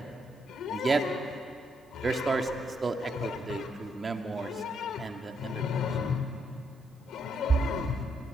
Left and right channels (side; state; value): both; normal; correlation 0.76